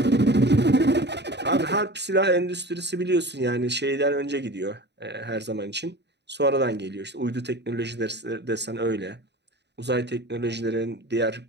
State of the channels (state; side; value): late; left; 0.50 ms